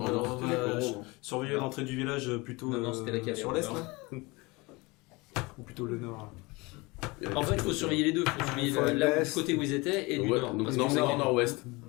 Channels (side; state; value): right; quieter; 24.6 dB